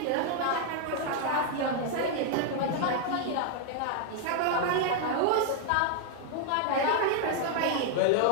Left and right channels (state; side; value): different; both; correlation 0.00